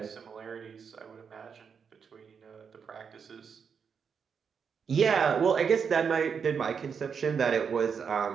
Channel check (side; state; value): left; quieter; 6.5 dB